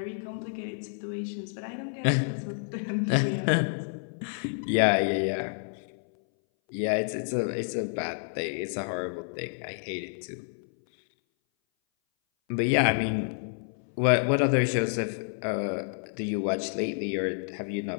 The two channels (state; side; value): silent; right; 58 dB below the other